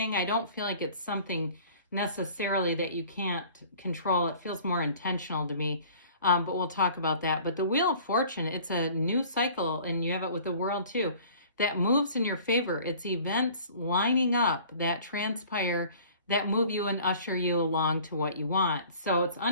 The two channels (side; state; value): both; inverted; correlation -0.48